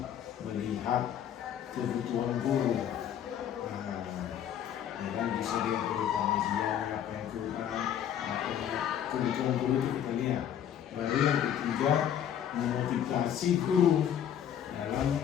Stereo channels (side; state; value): right; quieter; 9.7 dB